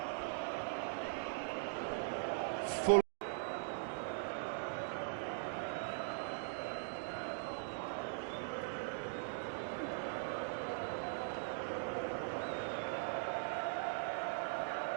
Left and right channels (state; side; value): silent; left; digital silence